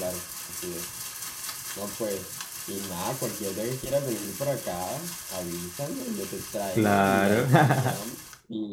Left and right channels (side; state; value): both; identical; correlation 1.00